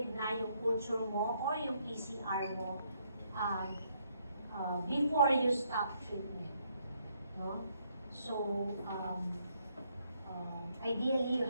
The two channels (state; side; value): inverted; both; correlation -0.73